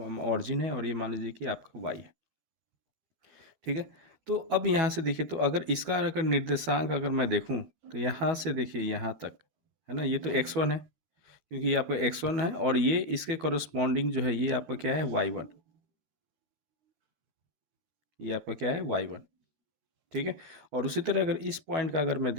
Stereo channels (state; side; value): late; left; 12 ms